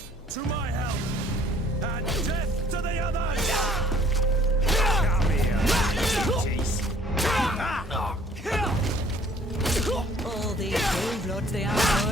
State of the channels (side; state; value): both; normal; correlation 0.58